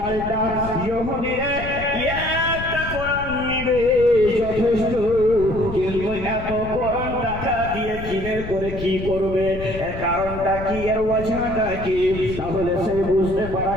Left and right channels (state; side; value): noise; left; rumble, 9 dB below the sound